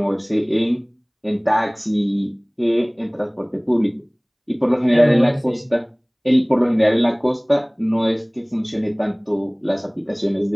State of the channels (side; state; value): both; identical; correlation 1.00